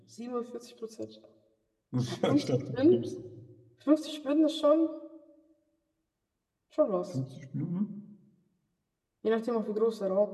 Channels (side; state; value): both; identical; correlation 1.00